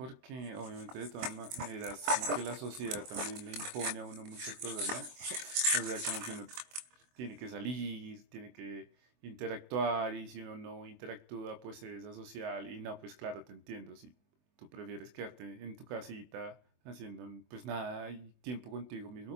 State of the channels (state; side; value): late; left; 24 ms